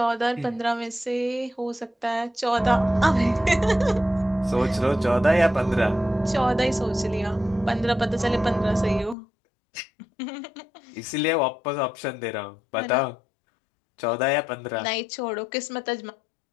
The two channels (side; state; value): right; drops out; at 9.2 s